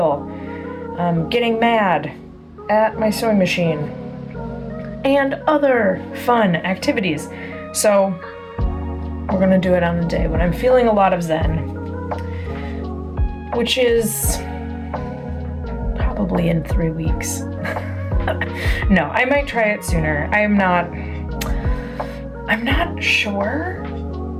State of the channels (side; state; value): both; identical; correlation 1.00